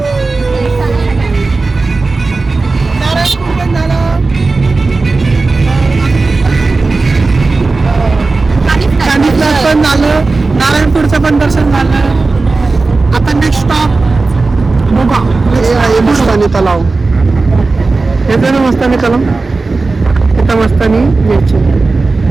पण झालं, नारायणपूरचं पण दर्शन झालं. आता नेक्स्ट स्टॉप बघा आहे मस्तानी तलाव. येतो ना मस्तानी तलाव. इथं मस्तानी यायची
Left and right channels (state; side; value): quieter; left; 3.7 dB